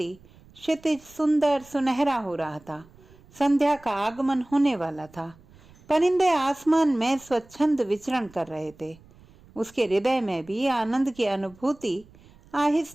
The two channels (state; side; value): noise; right; rumble, 26 dB below the sound